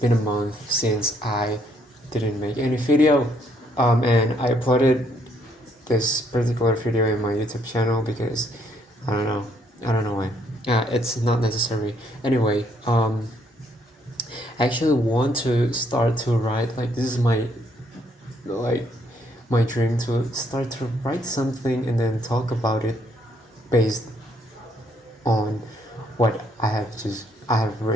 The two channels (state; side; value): normal; both; correlation 0.69